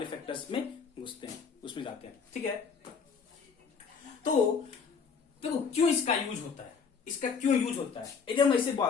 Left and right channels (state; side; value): quieter; right; 5.8 dB